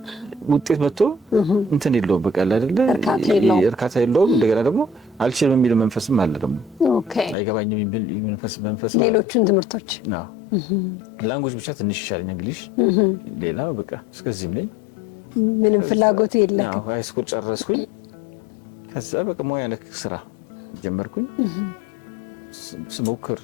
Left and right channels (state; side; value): drops out; right; at 7.4 s